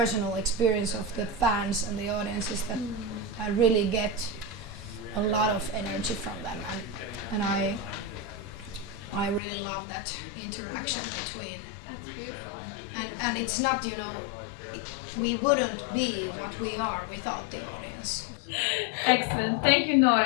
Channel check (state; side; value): drops out; right; at 9.4 s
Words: experience of the fans and the audience is that I really get a lot of energy from them, and I really love that interaction between. That's beautiful. And it's not, we wouldn't be what we are without the audience. Excellent. Thank you,